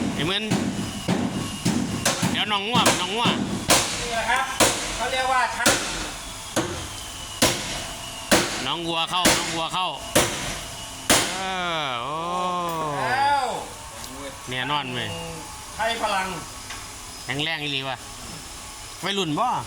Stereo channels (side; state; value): both; identical; correlation 1.00